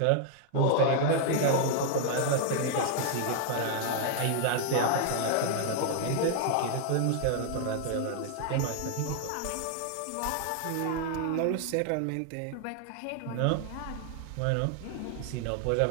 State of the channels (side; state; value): both; different; correlation 0.00